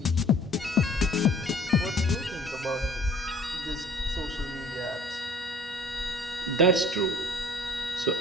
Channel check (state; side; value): normal; both; correlation 0.52